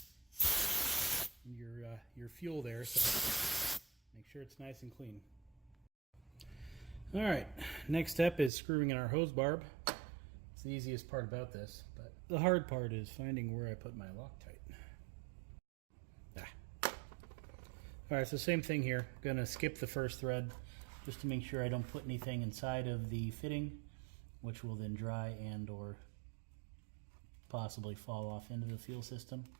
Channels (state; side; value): drops out; left; at 8.5 s